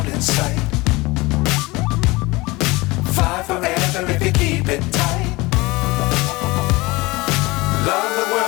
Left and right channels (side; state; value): right; quieter; 22.5 dB